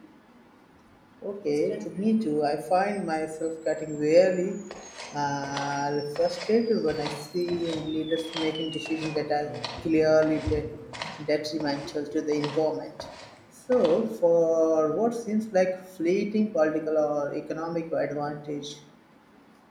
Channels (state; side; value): identical; both; correlation 1.00